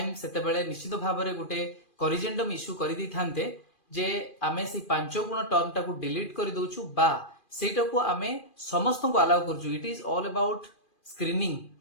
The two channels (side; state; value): right; late; 2.4 ms